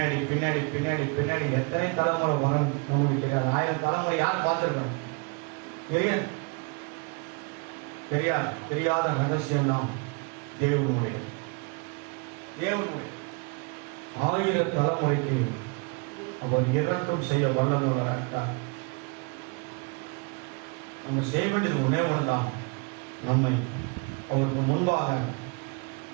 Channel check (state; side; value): quieter; left; 32.4 dB